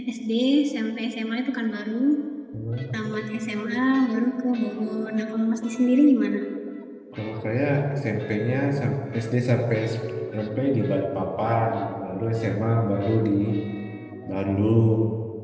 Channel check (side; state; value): both; identical; correlation 1.00